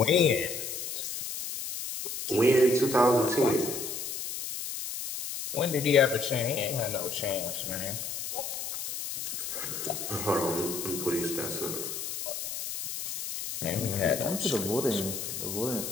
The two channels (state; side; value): noise; left; hiss, 5 dB below the sound